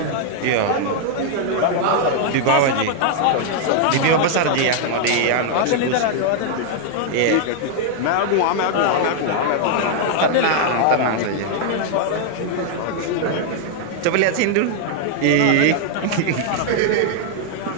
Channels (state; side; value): different; both; correlation 0.00